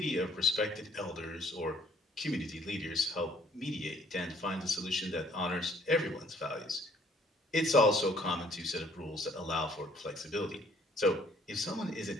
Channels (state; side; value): normal; both; correlation 0.60